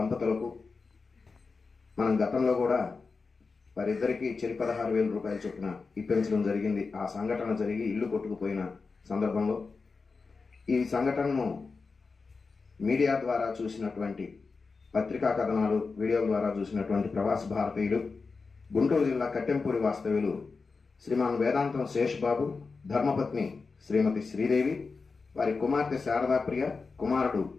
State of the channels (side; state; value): right; quieter; 4.5 dB